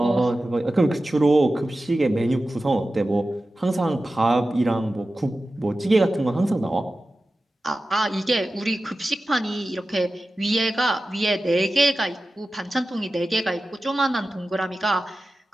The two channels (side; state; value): both; normal; correlation 0.94